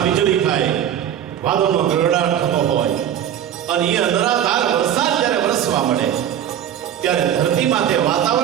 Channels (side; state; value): left; quieter; 10.2 dB